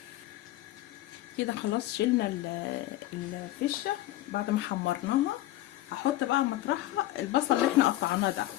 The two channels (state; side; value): quieter; right; 15.5 dB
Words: كده خلاص شلنا الفشه بعد ما حمرناها. هحط بقى مطرحها البصل اللي احنا قطعناه ده.